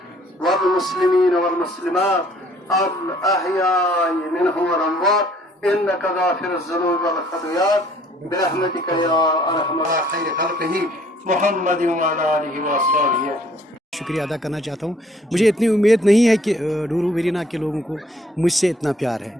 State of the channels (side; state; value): both; normal; correlation 0.60